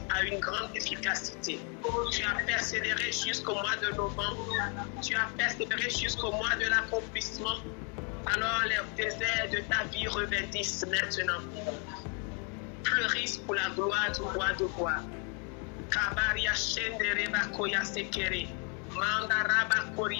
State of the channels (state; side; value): quieter; right; 37.6 dB